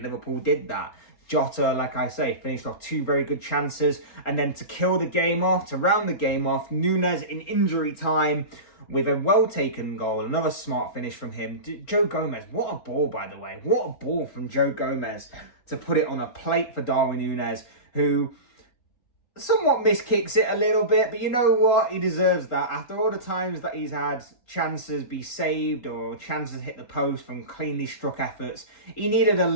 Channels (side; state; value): right; late; 3.8 ms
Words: Liverpool did that. Jota, like I say, finished off two very good chances, and then to kill the game off, to round the game off, Nunez in injury time with a well-taken goal, another smart finish from him. Joe Gomez, what a ball, by the way. What a ball from Joe Gomez to put it on a plate for Darwin Nunez, who somewhat miskicks it a little bit, but you know what? He deserves that. After all the times that he's had chances be saved or chances hit the post from cleanly struck efforts, he needed a